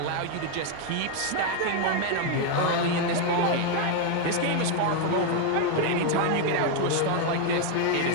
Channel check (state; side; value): different; both; correlation 0.01